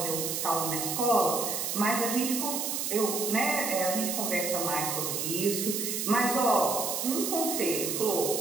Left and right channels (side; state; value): right; noise; hiss, 1 dB below the sound